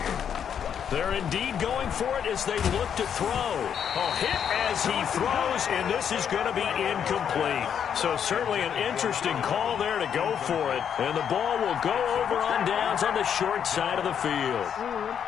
They're indeed going for it as they look to throw. A hit as he throws, and this is going to be incomplete. So certainly an interesting call there to go for it. And the ball will go over on downs on the short side of the field.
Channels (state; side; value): quieter; right; 8.2 dB